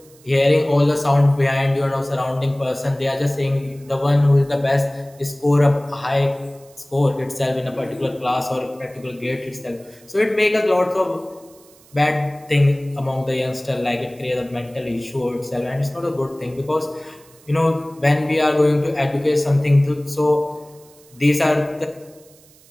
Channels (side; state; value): right; noise; hiss, 27 dB below the sound